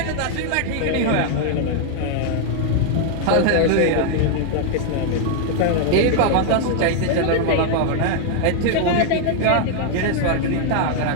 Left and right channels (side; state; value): both; different; correlation 0.00